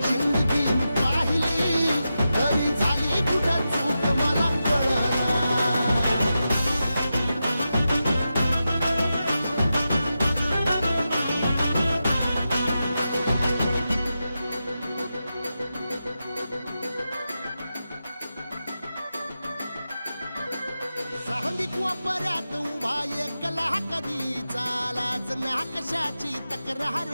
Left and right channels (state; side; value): inverted; both; correlation -0.90